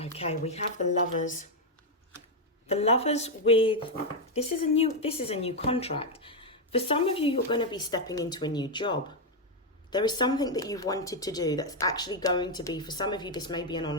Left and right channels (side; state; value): both; normal; correlation 0.02